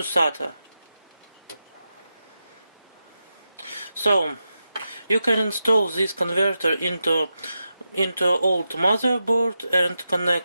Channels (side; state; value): both; inverted; correlation -0.89